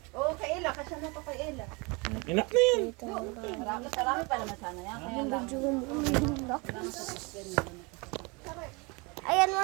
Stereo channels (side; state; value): left; quieter; 28.9 dB